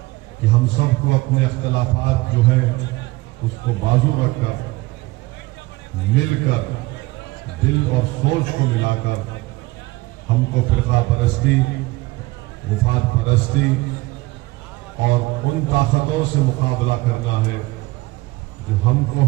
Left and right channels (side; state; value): left; quieter; 21.0 dB